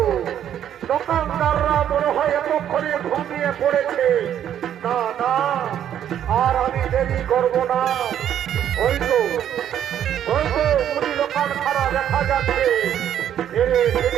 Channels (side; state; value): left; quieter; 10.1 dB